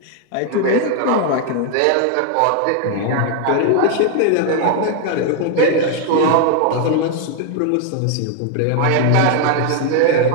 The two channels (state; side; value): different; both; correlation 0.00